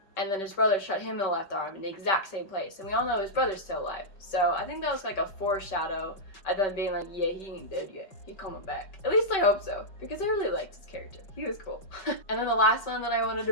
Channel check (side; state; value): right; late; 5.2 ms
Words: and then his brother shot him in the left arm in the exact same place, and we all know his brother's still alive. So I think that was like a foreshadow of them being like, yeah, he ain't dead yet, he coming back. At least I hope so, because I really liked his character. He was cool. And then the last one that I wanted to